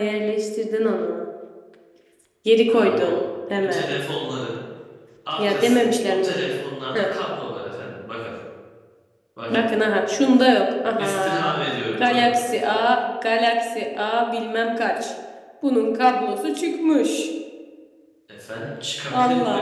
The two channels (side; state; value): both; identical; correlation 1.00